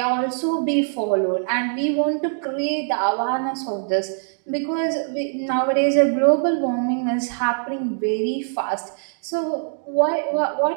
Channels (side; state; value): left; silent; digital silence